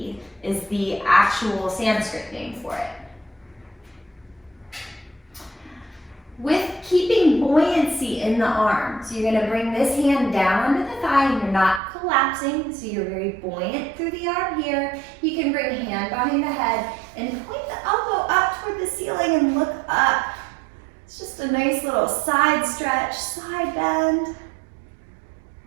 is the actual Sanskrit name for it. With keeping buoyancy in the arms, you're going to bring this hand down under the thigh and you're not collapsing, so you're very buoyant through the arm here. You can bring a hand behind the head and point the elbow up toward the ceiling and look up. It's just a nice little side stretch, side bend.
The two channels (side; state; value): left; drops out; at 11.8 s